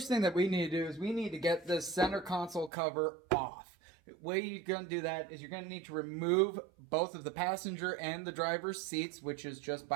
thing that we need to do is we need to get this center console cover off. The way you're going to do that is you're going to need to remove both of the passenger and the driver's seats, which is just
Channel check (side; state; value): left; drops out; at 2.7 s